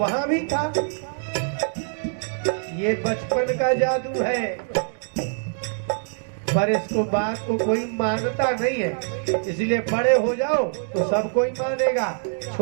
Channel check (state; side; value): silent; left; digital silence